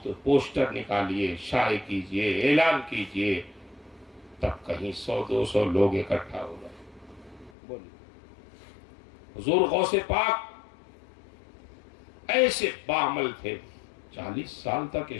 تو پوسٹر نکالیے، شائع کیجئے، اعلان کیجئے، تب کہیں 100-200 لوگ اکٹھا ہو گئے. بولیے. حضور غوث پاک ایسے باعمل تھے، 40 سال تک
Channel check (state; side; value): drops out; right; at 7.5 s